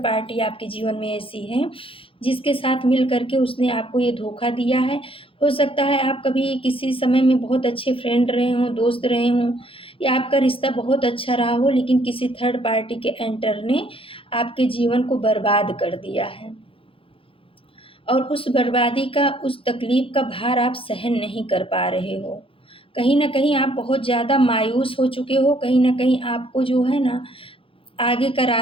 पार्टी आपके जीवन में ऐसी है जिसके साथ मिल करके उसने आपको ये धोखा दिया है। हो सकता है आप कभी किसी समय में बहुत अच्छे फ्रेंड रहे हों, दोस्त रहे हों, या आपका रिश्ता बहुत अच्छा रहा हो, लेकिन किसी थर्ड पार्टी के एंटर ने आपके जीवन को बर्बाद कर दिया है। और उस बर्बादी का, उस तकलीफ का भार आप सहन नहीं कर पा रहे हो। कहीं ना कहीं आप बहुत ज़्यादा मायूस हो चुके हो, कहीं ना कहीं आपको जो है ना आगे का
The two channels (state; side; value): late; right; 0.26 ms